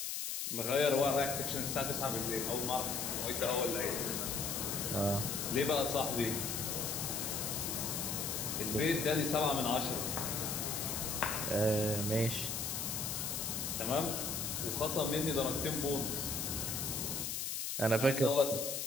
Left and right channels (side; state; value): left; noise; hiss, 2 dB below the sound